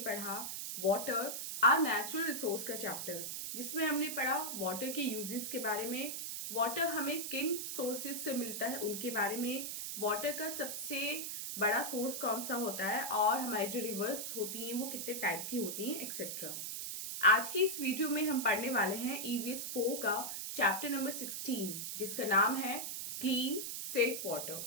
वाटर आर नेचुरल रिसोर्स का चैप्टर, जिसमें हमने पढ़ा वाटर के यूजेस के बारे में, वाटर हमें किन सोर्सेज से मिलता है उनके बारे में, वाटर का सबसे बड़ा सोर्स कौन सा होता है और हमारी जो रिवर्स होती हैं वो कितने टाइप की होती हैं एक्सेट्रा। आज की इस वीडियो में हम पढ़ने वाले हैं ईवीएस 4 का चैप्टर नंबर 16, जिसका नाम है क्लीन सेफ वाटर।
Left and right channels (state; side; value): noise; right; hiss, 4 dB below the sound